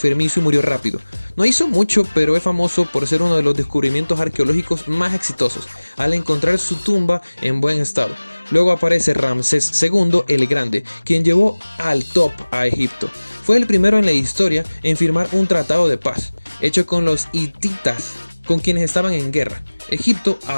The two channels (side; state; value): both; inverted; correlation -1.00